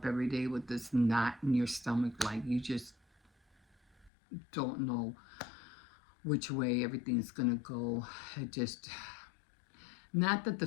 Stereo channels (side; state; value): right; drops out; at 4.1 s